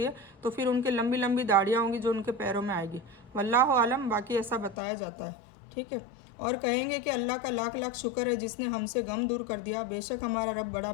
है, तो फिर उनकी लंबी लंबी दाढ़ियाँ होंगी जो उनके पैरों में आएगी। वल्लाहु आलम, बाकी ऐसा बताया जाता है। ठीक है। और कहेंगे कि अल्लाह का लाख लाख शुक्र है जिसने हमसे गम दूर कर दिया। बेशक हमारा रब बड़ा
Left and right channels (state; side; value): drops out; right; at 4.8 s